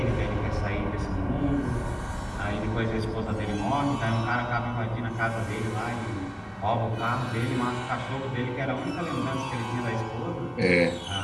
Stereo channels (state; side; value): identical; both; correlation 1.00